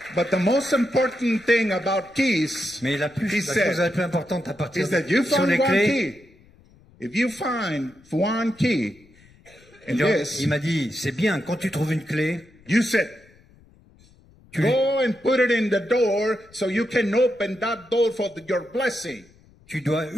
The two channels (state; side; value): noise; left; rumble, 28 dB below the sound